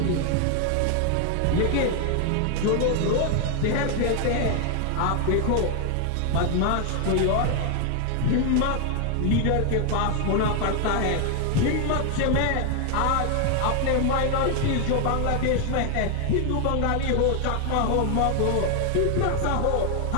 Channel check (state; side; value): different; both; correlation 0.00